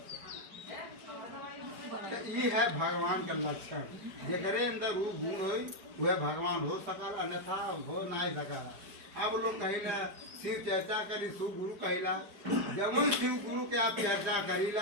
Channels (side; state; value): left; late; 5.0 ms